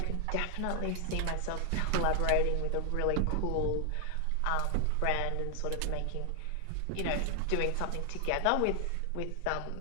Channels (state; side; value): different; both; correlation 0.00